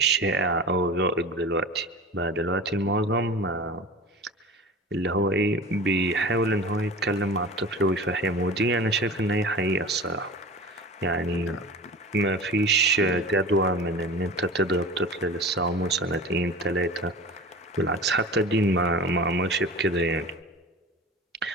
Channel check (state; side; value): normal; both; correlation 0.35